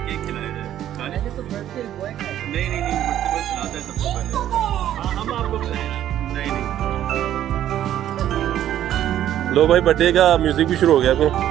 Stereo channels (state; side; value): quieter; left; 11.6 dB